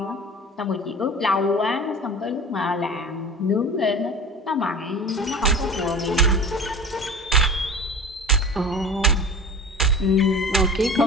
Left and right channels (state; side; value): normal; both; correlation 0.36